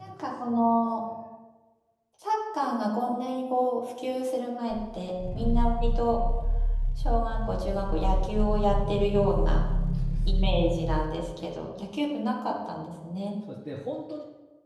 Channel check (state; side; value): identical; both; correlation 1.00